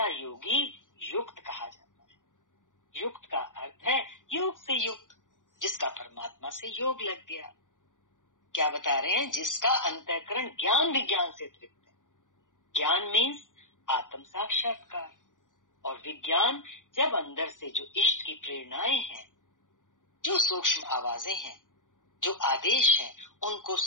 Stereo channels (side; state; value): right; late; 0.88 ms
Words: योगी युक्त कहा जाता है। युक्त का अर्थ है योग से युक्त, जिसका परमात्मा से योग लग गया। क्या बता रहे हैं? जिसका अंतःकरण ज्ञान विज्ञान से तृप्त है। ज्ञान मीन्स आत्म साक्षात्कार, और विज्ञान जब अंदर से जो इष्ट की प्रेरणाएं हैं, जो सूक्ष्म आवाजें हैं, जो आदेश हैं, उनको